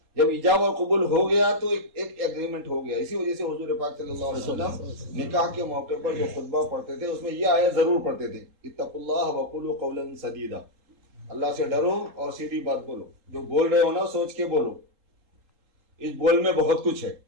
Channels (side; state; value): left; late; 3.8 ms